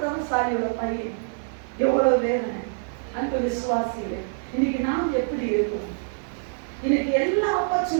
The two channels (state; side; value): silent; left; digital silence